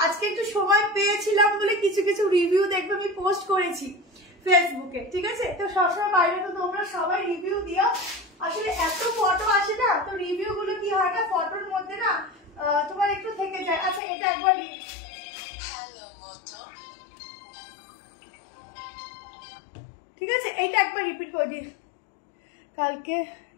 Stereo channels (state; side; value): drops out; right; at 14.0 s